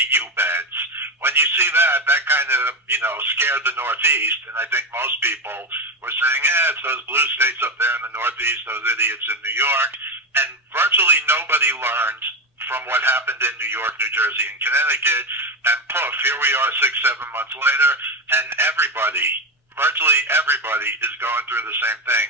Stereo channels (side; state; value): both; normal; correlation 0.16